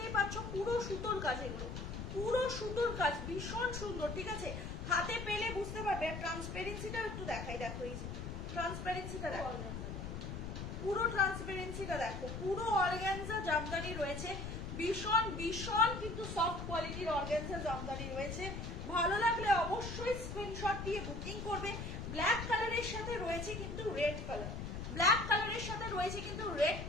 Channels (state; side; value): noise; left; rumble, 6 dB below the sound